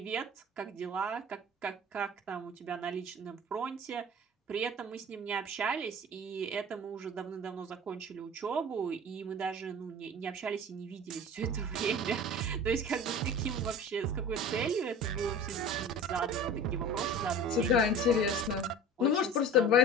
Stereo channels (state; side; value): normal; both; correlation 0.38